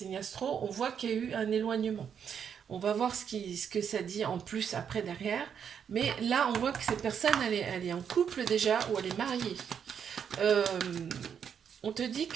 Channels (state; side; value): quieter; left; 7.7 dB